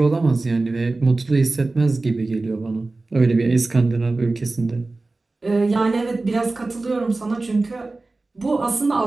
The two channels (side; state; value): left; quieter; 3.3 dB